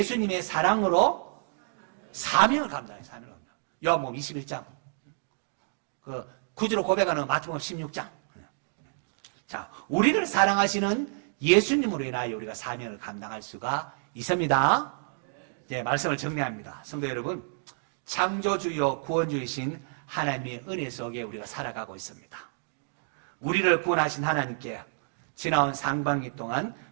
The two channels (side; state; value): left; silent; digital silence